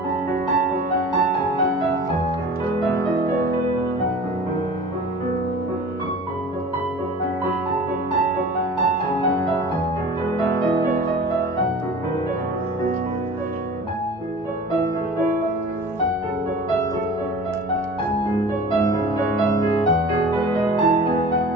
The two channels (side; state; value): both; normal; correlation 0.41